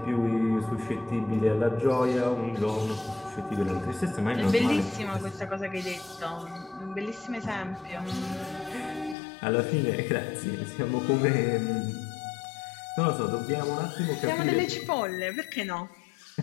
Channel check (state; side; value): drops out; right; at 9.2 s